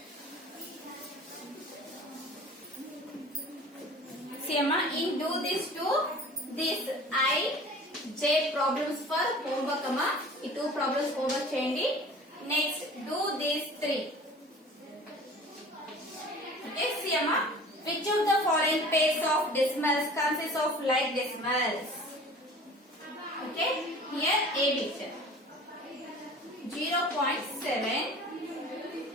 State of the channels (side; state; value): both; normal; correlation 0.44